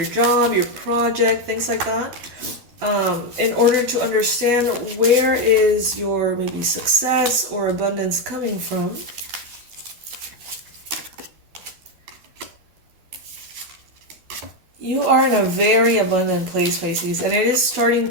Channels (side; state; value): left; late; 12 ms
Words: job, your project, things like that, in order to understand where is your maybe success or abundance coming from. You are in a very abundant place, Pisces, and it is starting